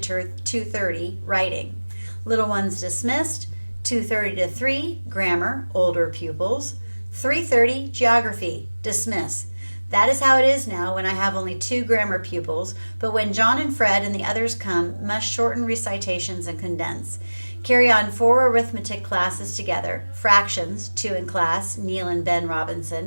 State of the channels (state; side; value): inverted; both; correlation -1.00